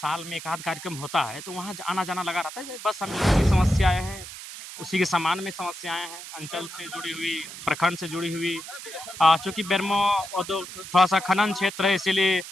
में 1 आध कार्यक्रम होता है, तो वहाँ ज आना-जाना लगा रहता है। बस हम लोगों की समस्याएँ हैं, उसी के समान में समस्याएँ हैं, अंचल से जुड़ी हुई, प्रखंड से जुड़ी हुई चूँकि बेरमो थोड़ा-सा खनन क्षेत्र है इसीलिए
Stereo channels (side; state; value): right; noise; hiss, 12 dB below the sound